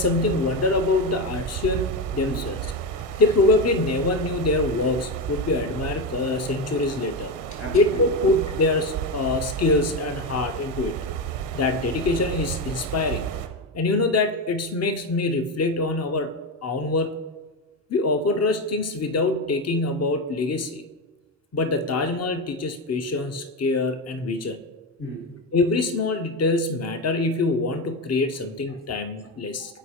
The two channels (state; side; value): normal; both; correlation 0.14